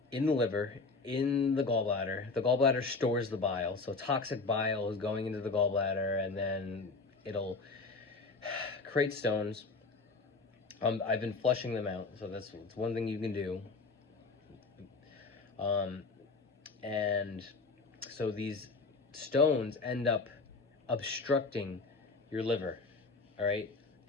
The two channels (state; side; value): quieter; right; 3.9 dB